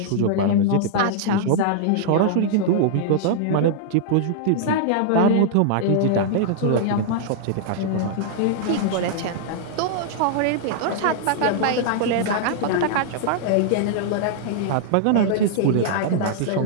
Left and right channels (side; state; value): both; different; correlation -0.01